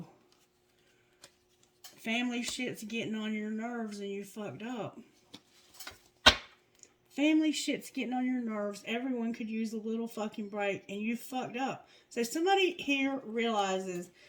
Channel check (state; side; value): identical; both; correlation 1.00